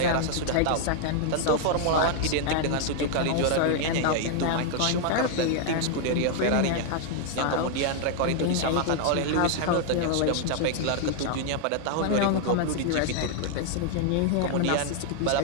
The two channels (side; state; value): both; different; correlation 0.00